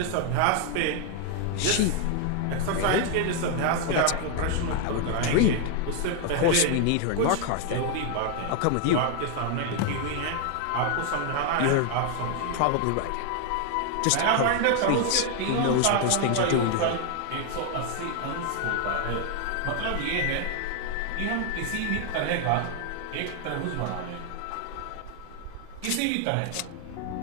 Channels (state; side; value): different; both; correlation 0.00